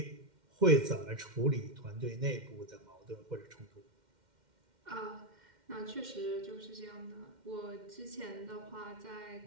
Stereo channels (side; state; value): left; late; 2.1 ms